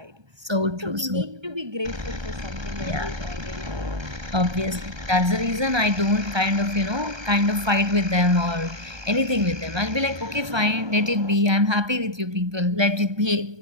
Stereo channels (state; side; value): late; left; 1.3 ms